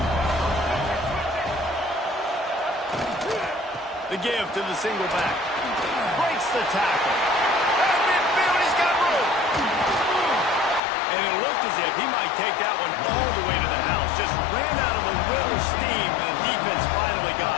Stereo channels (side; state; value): right; drops out; at 10.8 s